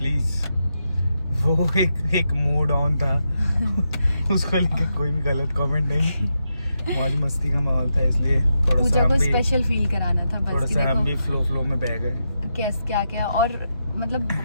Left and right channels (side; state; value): both; inverted; correlation -0.85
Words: वो एक मूड ऑन था उसको लेके कोई भी गलत कमेंट नहीं। मौज मस्ती का माहौल था, इसलिए थोड़ा पूजा को स्पेशल फील कराना था बस। थोड़ा सा हम भी फ्लो में बह गए। कैस क्या और मतलब